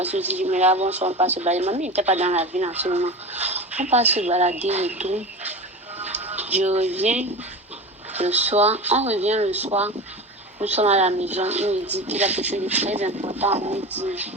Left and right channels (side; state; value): both; normal; correlation 0.29